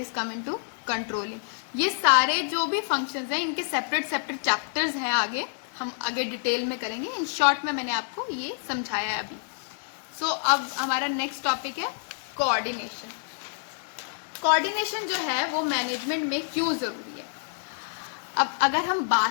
coming to controlling. ये सारे जो भी फंक्शंस हैं इनके सेपरेट सेपरेट चैप्टर्स हैं, आगे हम आगे डिटेल में करेंगे। इन शॉर्ट में मैंने आपको ये समझाया है अभी। सो अब हमारा नेक्स्ट टॉपिक है कोऑर्डिनेशन। कोऑर्डिनेशन जो है वो मैनेजमेंट में क्यों जरूरी है? अब अगर हम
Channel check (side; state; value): right; silent; digital silence